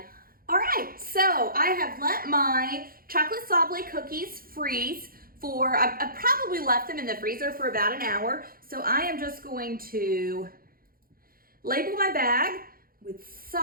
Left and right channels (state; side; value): late; left; 0.42 ms